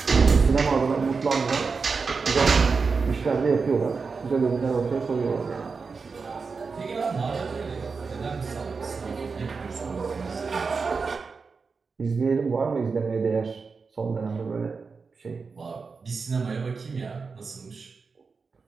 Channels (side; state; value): left; quieter; 4.8 dB